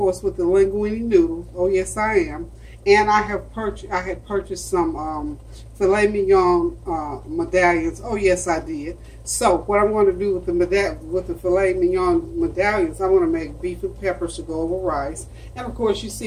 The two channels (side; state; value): both; identical; correlation 1.00